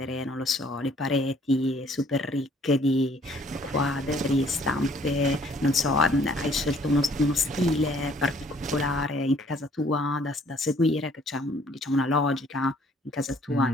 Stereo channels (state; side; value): normal; both; correlation 0.60